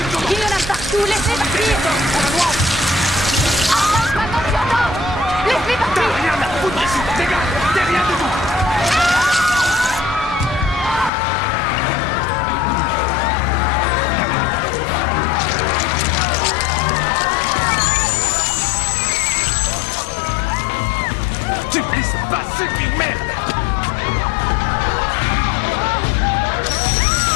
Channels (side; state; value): right; drops out; at 11.1 s